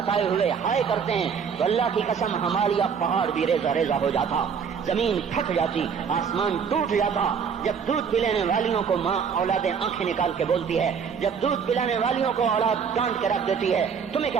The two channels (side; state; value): left; quieter; 6.6 dB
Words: ہوئے ہائے کرتے ہیں تو اللہ کی قسم ہمالیہ پہاڑ بھی ریزہ ریزہ ہو جاتا، زمین پھٹ جاتی، آسمان ٹوٹ جاتا۔ جب دودھ پلانے والیوں کو ماں اولادیں آنکھیں نکال کے بولتی ہے، جب دودھ پلانے والیوں کو اولاد ڈانٹ کے رکھ دیتی ہے، تمہیں کیا